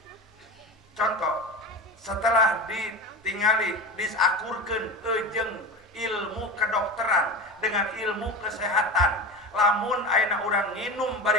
Contoh setelah ditingali disakurkeun jeung ilmu kedokteran dengan ilmu kesehatan lamun ayeuna urang nginum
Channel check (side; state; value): both; normal; correlation 0.28